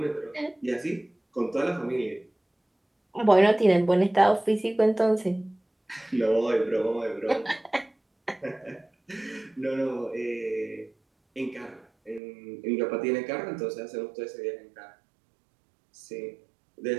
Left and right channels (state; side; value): drops out; left; at 12.2 s